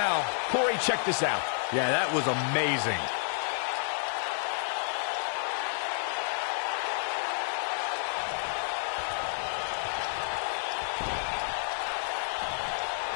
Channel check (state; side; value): silent; right; 58 dB below the other